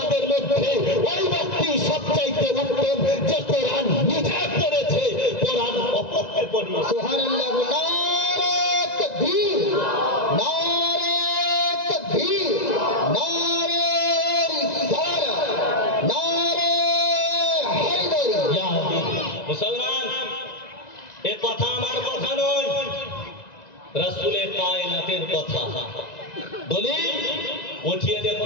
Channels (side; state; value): right; late; 1.9 ms